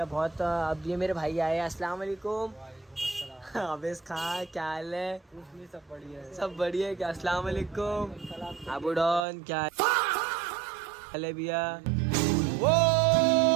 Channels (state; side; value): drops out; left; at 9.2 s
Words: बहुत। अब ये मेरे भाई आए। अस्सलाम वालेकुम। अबेस खा, क्या हाल है? सब बढ़िया है। सब बढ़िया है क्या? अस्सलाम वालेकुम अबू डॉन, क्या हाल है भैया?